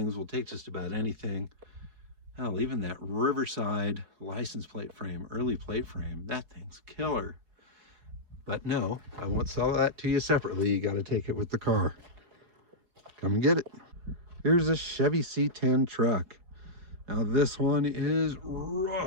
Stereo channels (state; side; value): late; left; 4.8 ms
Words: We'll take just about anything. Hell, even that Riverside license plate frame, early plate frame, that thing's killer. But no, I won't sell that to you separately. You got to take it with the car. Come and get it. Here's a Chevy C10 Truck. Now this one is